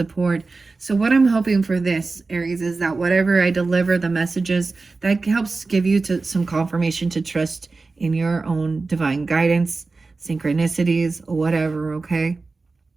So what I'm hoping for this, Aries, is that whatever I deliver, the messages, that helps give you some confirmation to trust in your own divine guidance, synchronicities, whatever, okay?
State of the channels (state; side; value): quieter; left; 3.8 dB